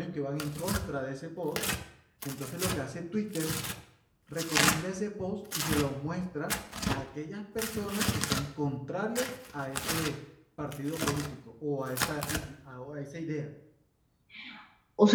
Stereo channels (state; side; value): identical; both; correlation 1.00